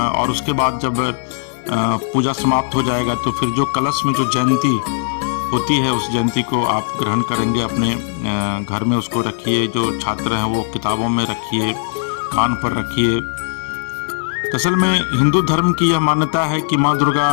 उसके बाद जब पूजा समाप्त हो जाएगा तो फिर जो कलश में जो जयंती होती है उस जयंती को आप ग्रहण करेंगे, अपने घर में उसको रखिए। जो छात्र हैं वो किताबों में रखिए, कान पर रखिए। असल में हिंदू धर्म की यह मान्यता है कि माँ दुर्गा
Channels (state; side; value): silent; right; 56 dB below the other